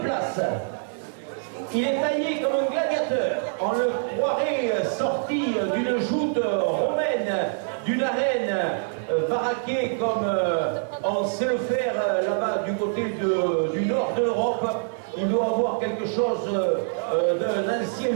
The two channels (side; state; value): left; silent; digital silence